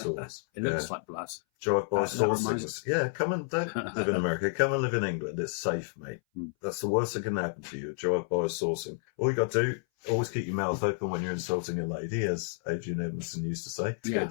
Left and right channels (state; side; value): silent; right; 58 dB below the other